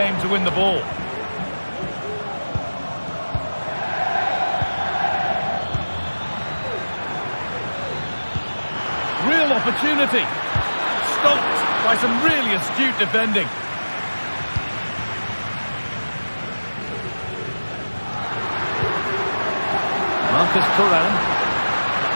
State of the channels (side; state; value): both; inverted; correlation -1.00